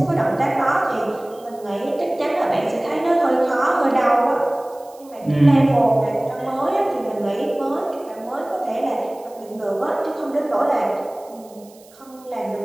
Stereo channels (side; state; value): right; noise; hiss, 26 dB below the sound